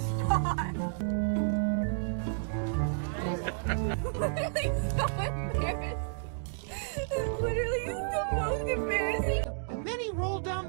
Literally the most embarrassing. And then he rolled down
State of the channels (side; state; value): left; silent; digital silence